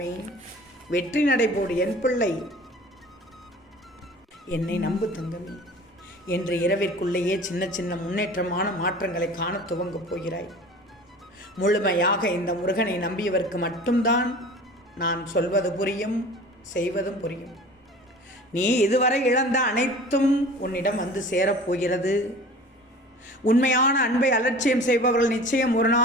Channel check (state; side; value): normal; both; correlation 0.42